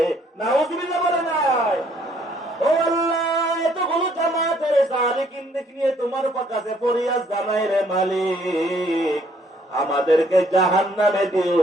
নাউযুবিল্লাহ বলে নাই? ও আল্লাহ, এতগুলো জামাতের সালিকিন নিয়ে তোমার কাছে ফরিয়াদ জানাই রে মালিক, আমাদেরকে জাহান্নামে দিও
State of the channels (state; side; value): normal; both; correlation 0.65